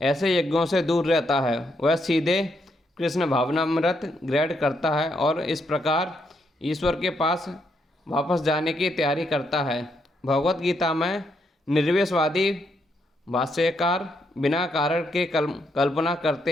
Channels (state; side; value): normal; both; correlation 0.77